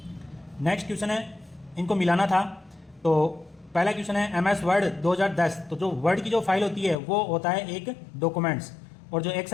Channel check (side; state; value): right; drops out; at 7.0 s